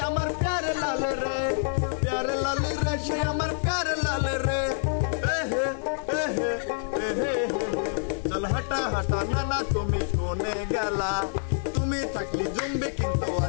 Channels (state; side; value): silent; right; digital silence